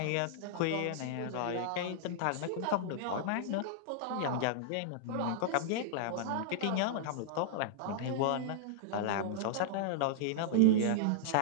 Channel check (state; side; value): different; both; correlation -0.01